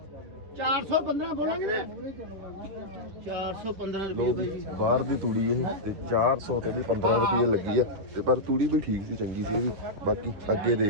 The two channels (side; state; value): left; late; 11 ms